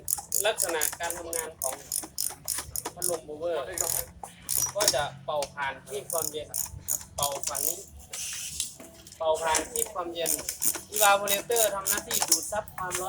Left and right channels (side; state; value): both; identical; correlation 1.00